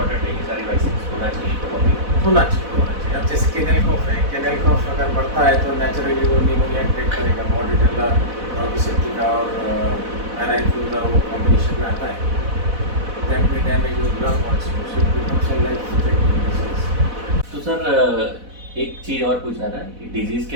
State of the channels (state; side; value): late; left; 4.1 ms